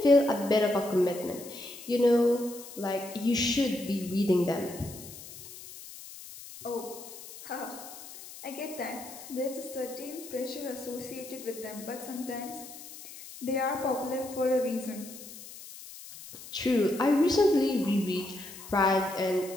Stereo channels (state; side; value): noise; left; hiss, 15 dB below the sound